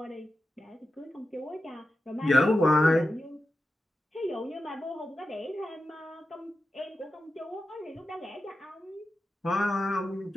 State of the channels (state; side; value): normal; both; correlation 0.91